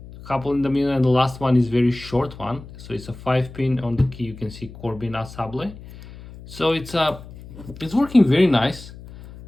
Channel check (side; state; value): left; noise; hum, 16 dB below the sound